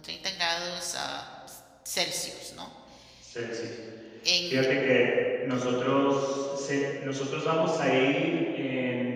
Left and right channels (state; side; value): identical; both; correlation 1.00